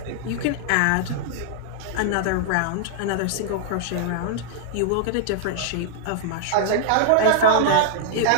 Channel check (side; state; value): both; different; correlation -0.01